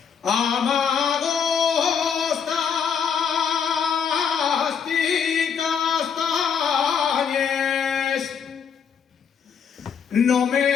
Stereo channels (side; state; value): right; quieter; 7.1 dB